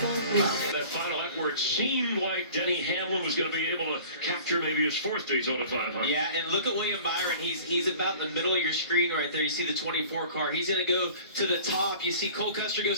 love. That final lap where it seemed like Denny Hamlin was going to be able to capture maybe his fourth Daytona 500. Yeah, and look at William Byron. He's about in the middle of your screen right there. You see the 24 car. He's going to go to the top. You see Cole Custer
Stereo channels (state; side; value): inverted; both; correlation -0.45